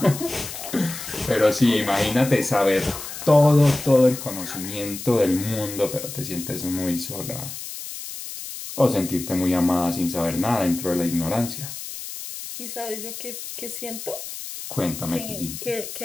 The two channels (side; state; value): left; noise; hiss, 9 dB below the sound